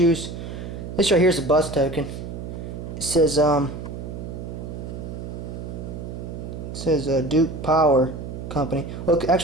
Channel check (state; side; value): noise; right; hum, 8 dB below the sound